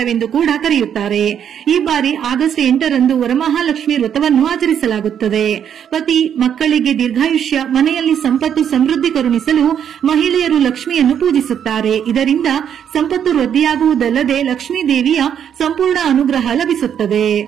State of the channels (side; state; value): left; quieter; 8.8 dB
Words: ಕೂಡ ಕರೆಯುತ್ತಾರೆ. ಈ ಬಾರಿ ಆಗಸ್ಟ್ 8ರಂದು ವರಮಹಾಲಕ್ಷ್ಮಿ ವ್ರತವನ್ನು ಆಚರಿಸಲಾಗುತ್ತದೆ. ಪತಿ ಮಕ್ಕಳಿಗೆ ದೀರ್ಘಾಯುಷ್ಯ, ಮನೆಯಲ್ಲಿ ಸಂಪತ್ತು ಸಮೃದ್ಧಿ ಕರುಣಿಸಲು ಮಹಿಳೆಯರು ಲಕ್ಷ್ಮಿಯನ್ನು ಪೂಜಿಸುತ್ತಾರೆ. ಇದರಿಂದ ಸಂಪತ್ತು ವೃದ್ಧಿಯಾಗುವುದಲ್ಲದೆ ಲಕ್ಷ್ಮೀ ದೇವಿಯ ಸಂಪೂರ್ಣ ಅನುಗ್ರಹ ಲಭಿಸುತ್ತದೆ.